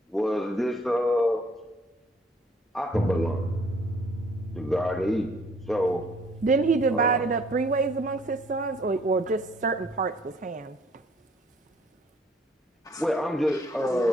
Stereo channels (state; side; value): normal; both; correlation 0.61